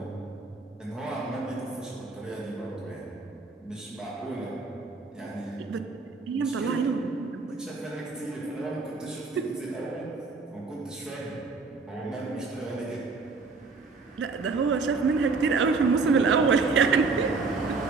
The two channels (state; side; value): quieter; left; 4.2 dB